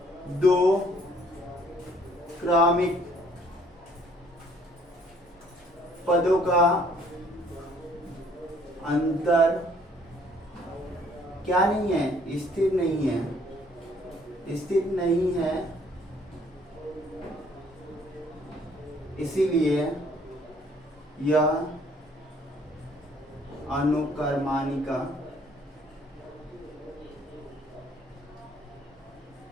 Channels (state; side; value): normal; both; correlation 0.61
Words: 2 क्रमिक पदों का अंतर क्या नहीं है, स्थिर नहीं है, स्थिर नहीं है, इसीलिए यह अनुक्रमानिका